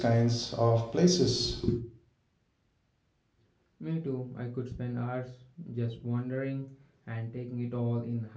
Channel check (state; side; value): identical; both; correlation 1.00